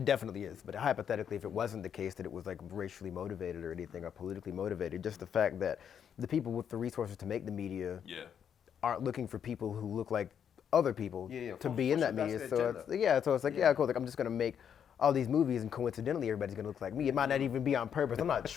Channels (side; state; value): right; quieter; 8.3 dB